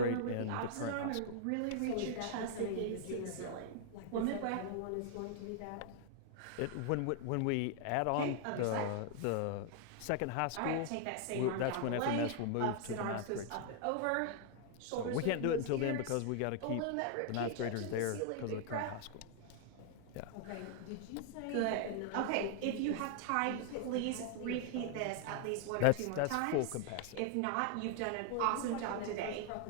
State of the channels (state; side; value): different; both; correlation 0.00